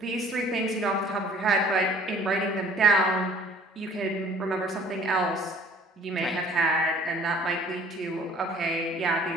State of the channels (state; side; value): normal; both; correlation 0.53